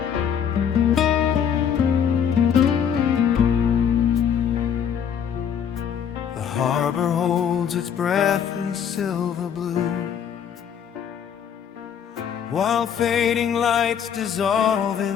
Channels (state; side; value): quieter; right; 8.2 dB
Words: Harbor holds its breath in silver blue, while fading lights dissolve